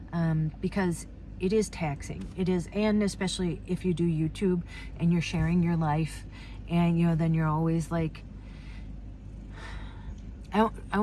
because it is taxing. It is, and especially if you do YouTube and you're sharing your life, and you know, then you're always like, I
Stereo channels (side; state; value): both; identical; correlation 1.00